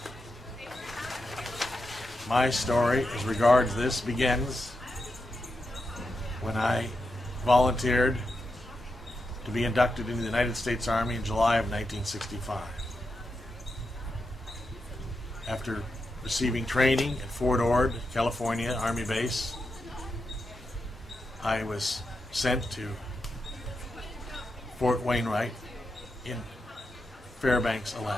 My story as regards this begins when I volunteered to be inducted into the United States Army in July of 1965. After receiving training at Fort Ord, California Army Base, I was sent to Fort Wainwright in Fairbanks,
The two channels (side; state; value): both; normal; correlation 0.87